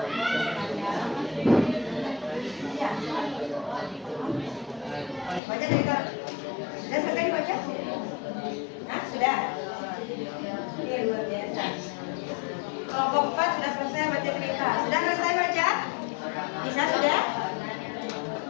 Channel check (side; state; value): right; drops out; at 5.4 s